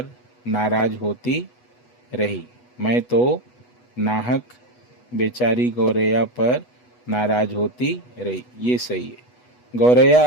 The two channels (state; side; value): late; right; 8.2 ms